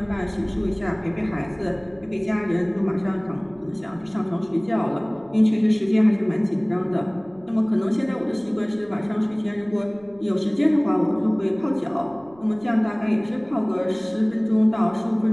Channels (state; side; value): noise; right; rumble, 27 dB below the sound